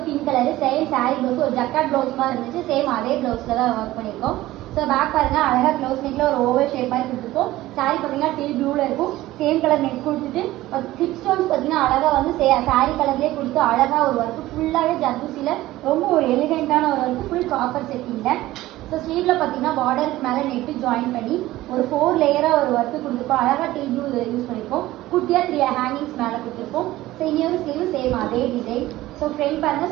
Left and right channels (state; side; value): quieter; left; 16.5 dB